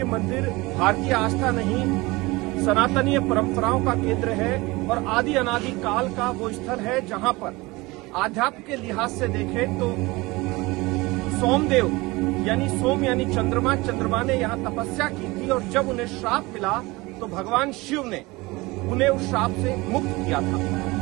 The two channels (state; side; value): quieter; left; 22.5 dB